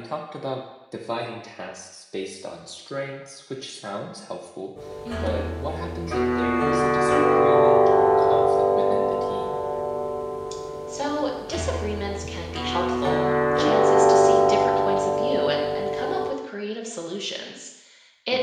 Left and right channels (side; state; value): both; identical; correlation 1.00